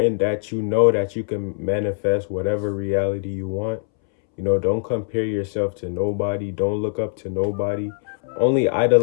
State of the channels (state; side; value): silent; right; 64 dB below the other